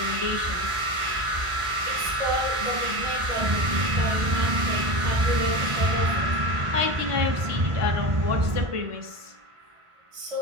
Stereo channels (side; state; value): left; late; 1.5 ms